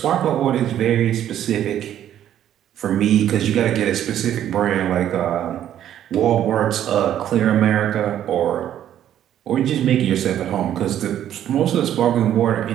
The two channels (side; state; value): left; quieter; 11.0 dB